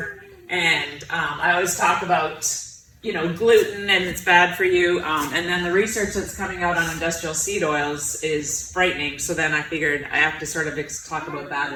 And I always talk about, gluten and it's bad for you. And then the research that's coming out on industrial seed oils is frightening. So then I figured I have to sort of talk about that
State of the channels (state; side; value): identical; both; correlation 1.00